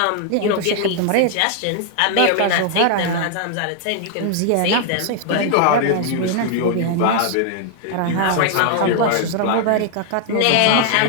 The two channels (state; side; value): different; both; correlation 0.00